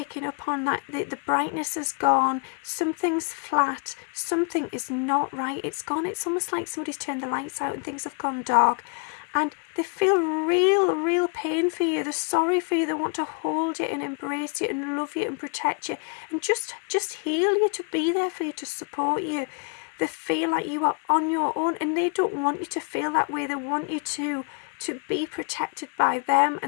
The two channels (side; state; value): right; quieter; 38.6 dB